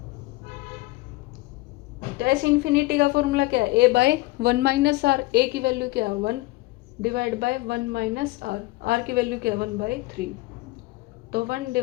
तो एस इंफिनिटी का फॉर्मूला क्या है, A/1 माइनस आर। ए की वैल्यू क्या है 1 divide by 1 minus R. R की वैल्यू क्या है 1/3। तो 1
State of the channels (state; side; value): quieter; right; 20.3 dB